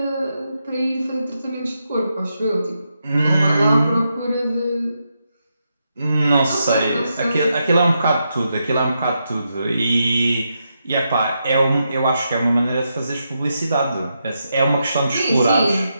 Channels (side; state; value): both; inverted; correlation -0.84